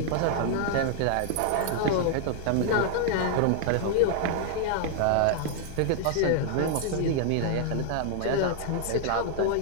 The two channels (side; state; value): both; different; correlation 0.00